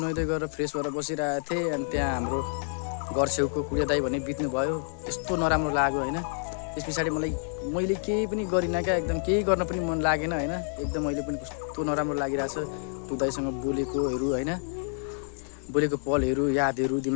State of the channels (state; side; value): silent; right; digital silence